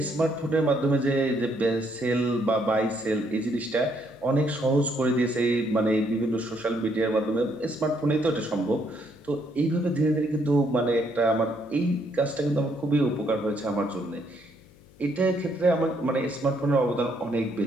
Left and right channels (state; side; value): noise; left; hum, 26 dB below the sound